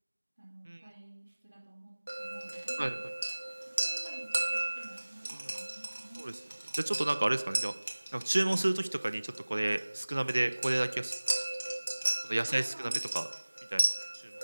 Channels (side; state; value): both; inverted; correlation -1.00